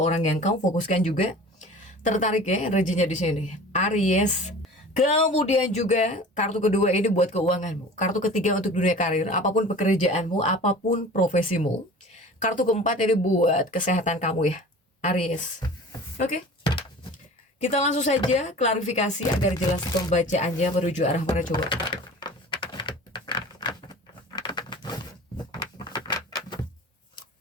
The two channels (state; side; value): normal; both; correlation 0.41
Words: yang kamu fokuskan juga tertarik ya energinya di sini. Aries. Kemudian juga kartu kedua ini buat keuanganmu. Kartu ketiga untuk dunia karir, apapun pekerjaanmu, apapun profesimu. Kartu keempat ini buat kesehatan kamu ya, Aries. Oke. Kita langsung saja klarifikasi agar jelas pembacaannya menuju arah mana coba.